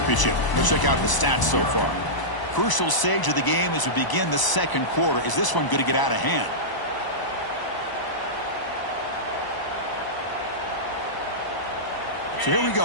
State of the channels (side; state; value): right; late; 1.0 ms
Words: Let's check out the stats so far. Crucial stage of the game as we begin the second quarter. Is this one going to get out of hand? So here we